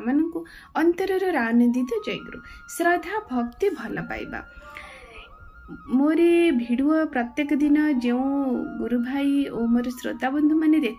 मानू अंतरर आनंदित जयगुरु श्रद्धा भक्ति भल पाइबा। मोर भिडियो प्रत्येक दिन जो गुरु भाई और मोर श्रोता बंधु मैंने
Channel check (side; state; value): both; identical; correlation 1.00